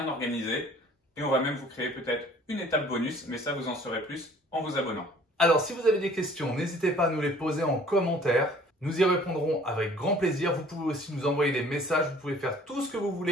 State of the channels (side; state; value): both; normal; correlation 0.53